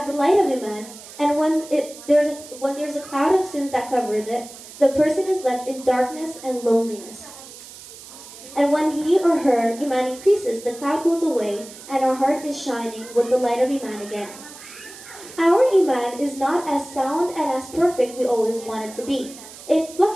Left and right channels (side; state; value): right; noise; hiss, 17 dB below the sound